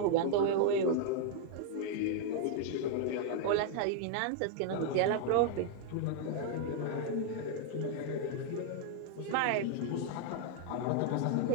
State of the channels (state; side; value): different; both; correlation 0.00